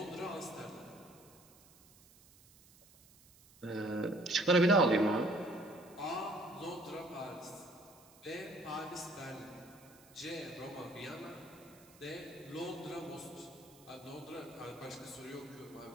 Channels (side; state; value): right; noise; hiss, 25 dB below the sound